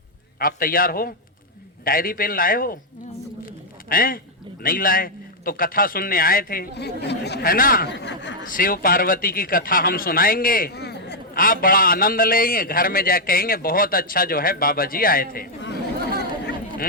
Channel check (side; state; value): both; normal; correlation -0.03